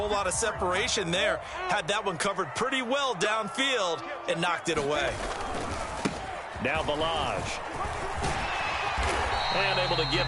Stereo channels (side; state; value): both; identical; correlation 1.00